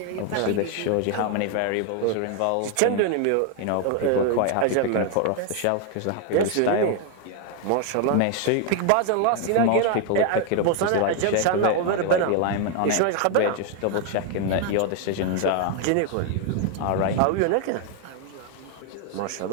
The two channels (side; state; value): both; different; correlation 0.00